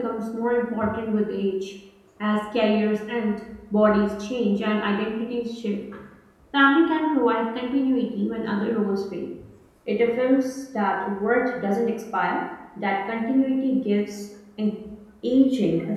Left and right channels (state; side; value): identical; both; correlation 1.00